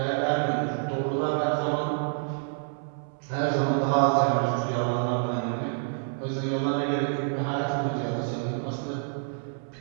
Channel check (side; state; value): left; silent; 60 dB below the other